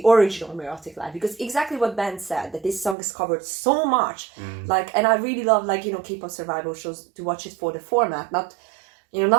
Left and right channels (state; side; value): drops out; left; at 3.0 s